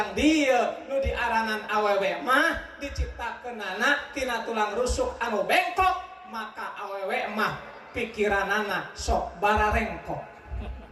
dieu nu diaranan awewe mah diciptakeunana tina tulang rusuk anu bengkok, maka awewe mah pikiranana sok bararengkok.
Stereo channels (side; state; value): both; identical; correlation 1.00